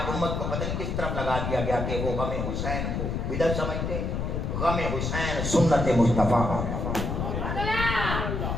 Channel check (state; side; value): noise; left; rumble, 2 dB below the sound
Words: امت کو پتہ نہیں کس طرف لگا دیا گیا کہ وہ غم حسین کو بدعت سمجھتے ہیں. غم حسین سنت مصطفیٰ.